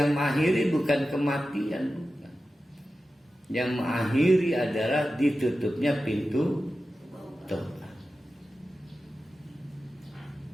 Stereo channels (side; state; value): both; normal; correlation 0.93